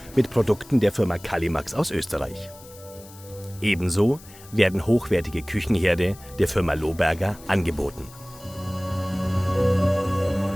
mit Produkten der Firma Kalimax aus Österreich. Ebenso werden hochwertige Küchenherde der Firma Lohberger angeboten.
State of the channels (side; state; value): left; noise; hiss, 21 dB below the sound